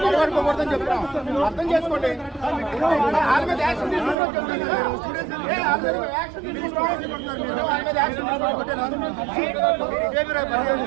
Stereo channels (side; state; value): left; drops out; at 4.2 s